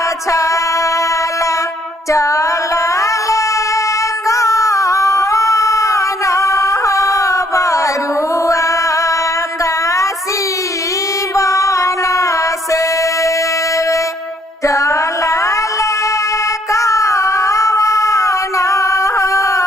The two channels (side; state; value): both; normal; correlation 0.67